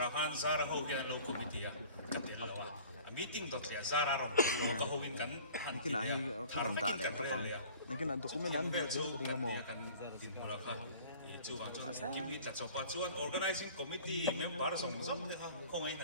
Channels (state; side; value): inverted; both; correlation -0.46